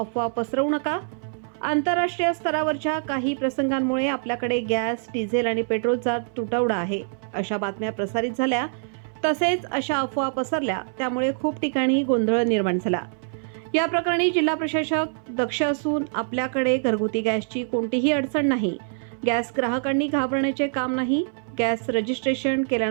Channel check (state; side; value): silent; left; 60 dB below the other